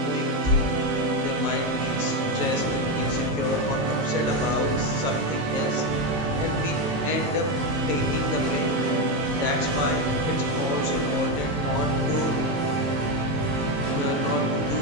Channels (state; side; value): late; left; 19 ms